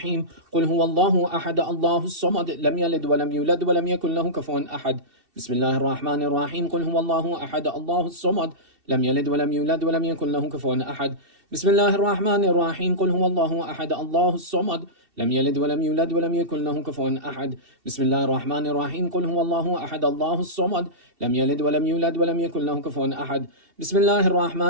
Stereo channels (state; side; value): late; left; 2.7 ms